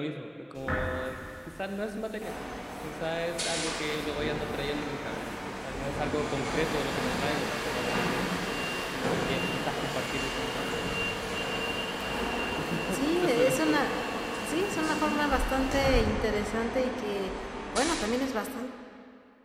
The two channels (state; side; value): identical; both; correlation 1.00